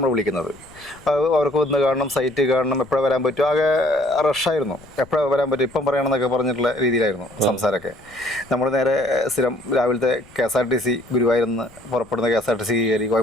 വിളിക്കുന്നത്. അവർക്ക് വന്ന് കാണണം, സൈറ്റ് കാണണം, എപ്പോഴാണ് വരാൻ പറ്റും. ആകെ റഷായിരുന്നു, എപ്പോഴാണ് വരാൻ പറ്റും, ഇപ്പം പറയണമെന്നൊക്കെ പറഞ്ഞിട്ടുള്ള രീതിയിലായിരുന്നു സംസാരമൊക്കെ. നമ്മൾ നേരെ സ്ഥിരം രാവിലത്തെ KSRTC ഗുരുവായൂരിൽ നിന്ന് പുറപ്പെടുന്ന KSRTC കയറി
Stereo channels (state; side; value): noise; left; rumble, 25 dB below the sound